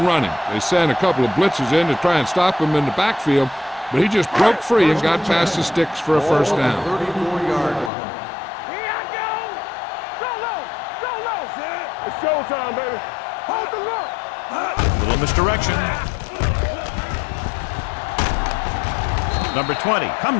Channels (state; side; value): drops out; right; at 7.9 s